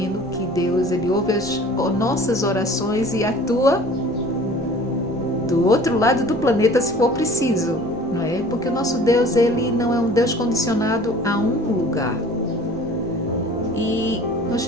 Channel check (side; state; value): both; normal; correlation 0.47